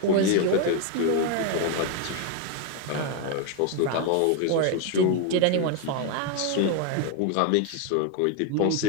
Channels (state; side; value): different; both; correlation 0.01